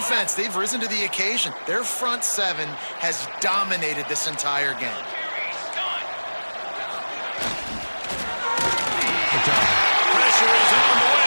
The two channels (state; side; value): inverted; both; correlation -1.00